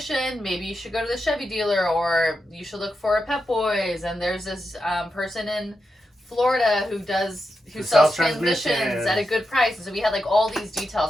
maybe you should go to the Chevy dealer, or you should look for a Pep Boys. And there's this person in Florida who sells transmissions at a good price. And so we had like all these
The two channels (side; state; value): both; normal; correlation 0.87